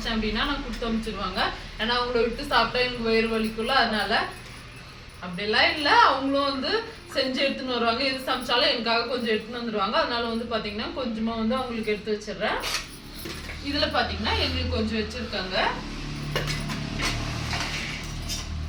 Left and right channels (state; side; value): identical; both; correlation 1.00